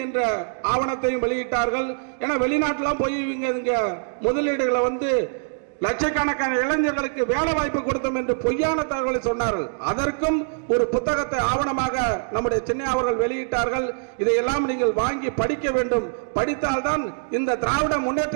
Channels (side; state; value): left; silent; digital silence